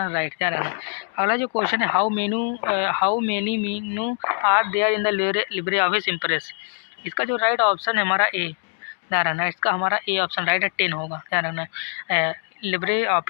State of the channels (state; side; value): silent; right; 63 dB below the other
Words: राइट, ध्यान रखना। अगला जो क्वेश्चन है, how many menu are there in the LibreOffice impress. इसका जो राइट ऑप्शन है हमारा ए, ध्यान रखना, इसका हमारा ए ऑप्शन राइट है, 10 होगा, ध्यान रखना। लिब्रे